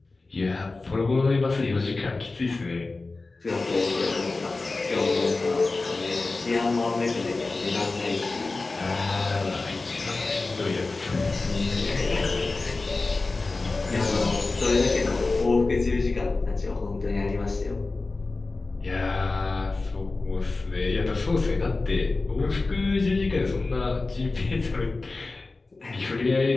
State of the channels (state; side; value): quieter; right; 3.5 dB